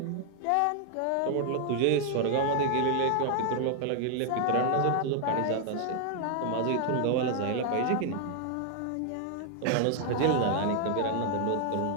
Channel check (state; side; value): different; both; correlation 0.00